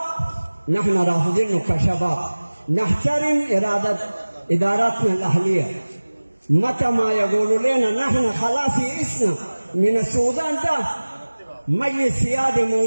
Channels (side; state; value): both; inverted; correlation -1.00